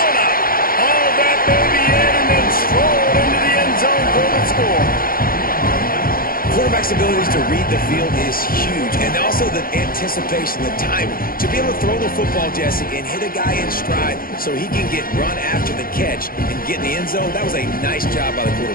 quarterback's abilities to read the field is huge, and also the anticipation, the timing. To be able to throw the football, Jesse, and hit a guy in stride so he can get run after the catch and get in the end zone, that was a nice job by the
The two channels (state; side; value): late; right; 0.42 ms